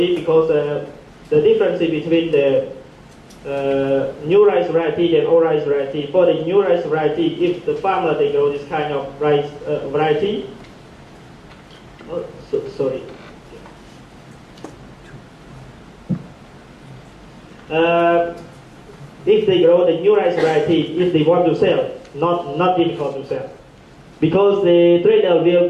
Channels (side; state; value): both; identical; correlation 1.00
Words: because the difference between the new rice variety and old rice variety. For the new rice variety, if the farmer they grow this kind of rice variety, if they grow the new rice variety, if they want to sell, not difficult to sell, because the trader will